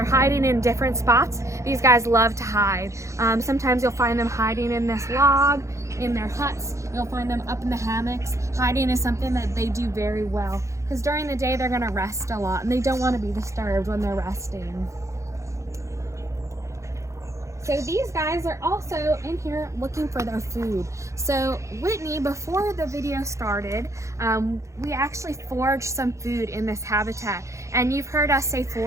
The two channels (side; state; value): left; late; 0.15 ms